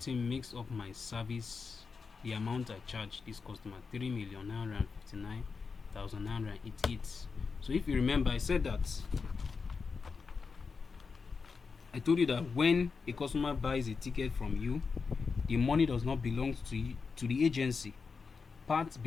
makes up my service, the amount I charge this customer, 3,959,988. So if you remember, I said that I told you that when a customer buys a ticket from you, the money does not belong to you, to the agency. Parts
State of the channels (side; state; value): right; quieter; 5.0 dB